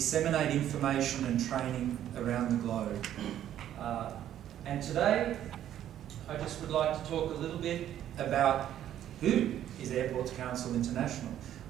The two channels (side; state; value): left; quieter; 11.3 dB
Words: information and training around the globe. And today, I just would like to talk a little bit about who is Airports Council International.